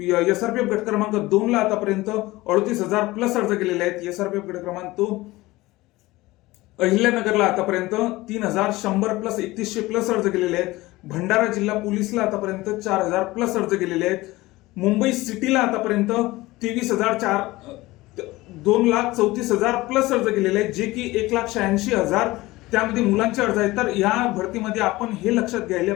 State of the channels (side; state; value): right; quieter; 19.5 dB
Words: एसआरपीएफ गट क्रमांक 2 ला आतापर्यंत 38,000 प्लस अर्ज गेलेले आहेत. एसआरपीएफ गट क्रमांक 2 अहिल्यानगरला आतापर्यंत 3,100 प्लस 3100 प्लस अर्ज गेलेले आहेत. भंडारा जिल्हा पोलीसला आतापर्यंत 4,000 प्लस अर्ज गेलेले आहेत. मुंबई सिटीला आतापर्यंत 2,34,000 प्लस अर्ज गेलेले आहेत, जे की 1,86,000 त्यामध्ये मुलांचे अर्ज आहेत. तर या भरतीमध्ये आपण हे लक्षात घ्यायला